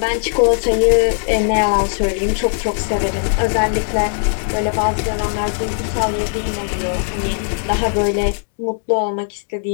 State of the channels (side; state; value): right; silent; digital silence